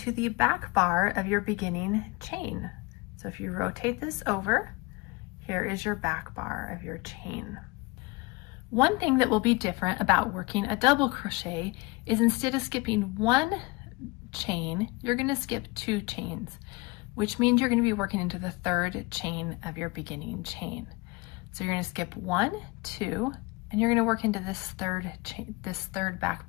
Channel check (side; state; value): right; quieter; 25.2 dB